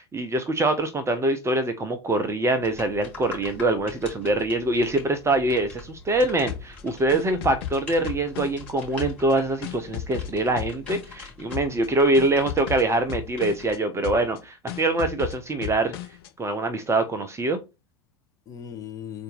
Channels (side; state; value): both; normal; correlation 0.36